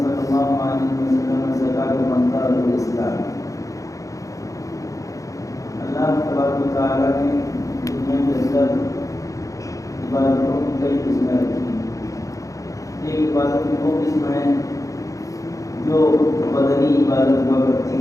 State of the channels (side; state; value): right; late; 0.16 ms